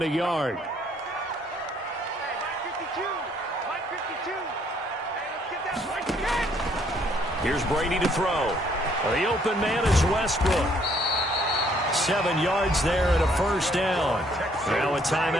a yard. Here's Brady to throw. The open man is Westbrook. 7 yards there and a 1st down. Now a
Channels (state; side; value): normal; both; correlation 0.66